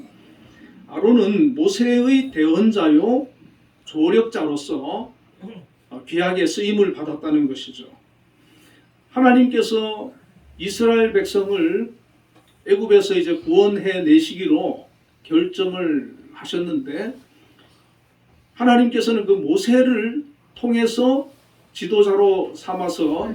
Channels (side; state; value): both; identical; correlation 1.00